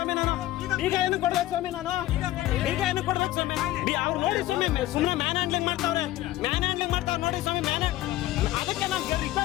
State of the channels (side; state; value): right; quieter; 15.5 dB